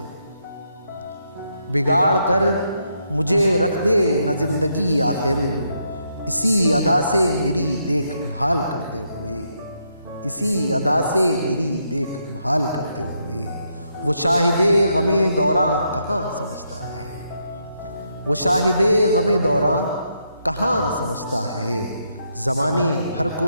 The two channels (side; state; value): both; inverted; correlation -0.78